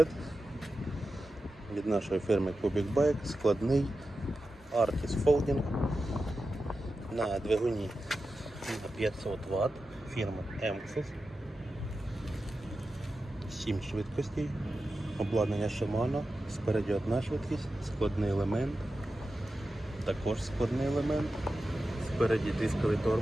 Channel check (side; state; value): both; normal; correlation 0.92